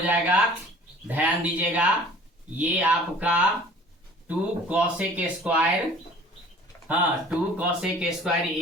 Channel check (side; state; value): both; normal; correlation 0.48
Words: ध्यान दीजिएगा, ये आपका 2 कॉसेक स्क्वायर, हाँ 2 कॉसेक स्क्वायर